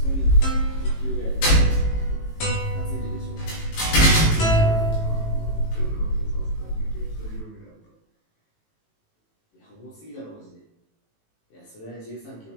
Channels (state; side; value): late; right; 18 ms